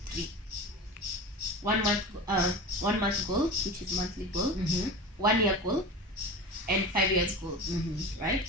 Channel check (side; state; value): both; normal; correlation 0.30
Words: 3. 1 month goal, which is monthly goal, 1 year goal, and 5 years goal, right?